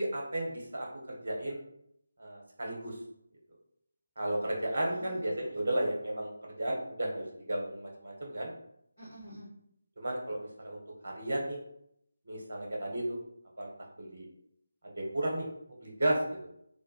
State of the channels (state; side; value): inverted; both; correlation -0.94